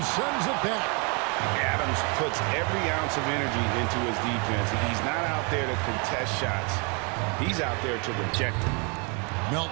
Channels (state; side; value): quieter; left; 34.1 dB